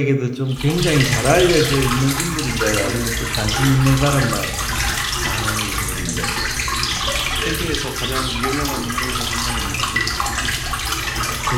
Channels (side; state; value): both; identical; correlation 1.00